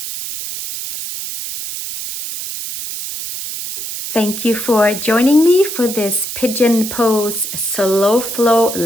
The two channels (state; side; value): noise; right; hiss, 7 dB below the sound